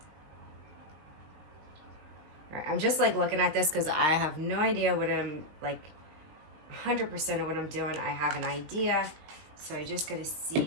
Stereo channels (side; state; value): left; late; 19 ms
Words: All right, I'm just like looking at this because I have no idea what I'm like 100% of what I'm doing. I have an idea, so I just got to